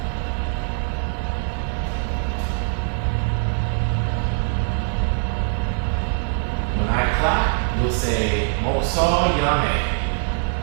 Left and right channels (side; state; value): left; silent; 64 dB below the other